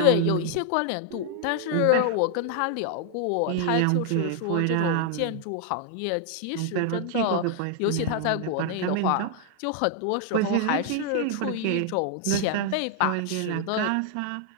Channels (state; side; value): different; both; correlation 0.00